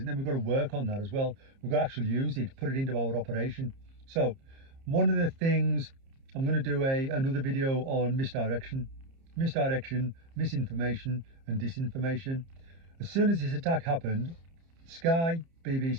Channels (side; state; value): left; late; 30 ms